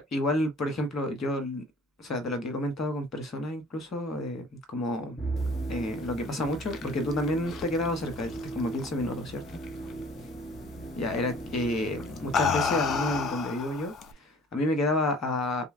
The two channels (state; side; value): normal; both; correlation 0.50